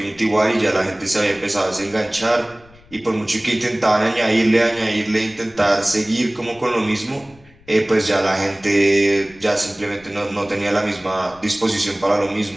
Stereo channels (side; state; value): left; noise; rumble, 26 dB below the sound